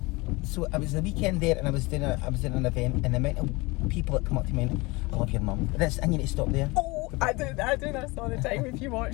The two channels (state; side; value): quieter; right; 24.3 dB